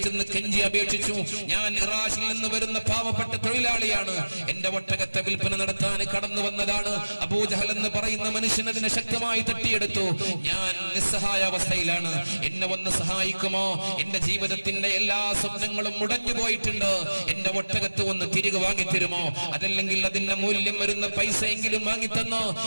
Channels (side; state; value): both; inverted; correlation -1.00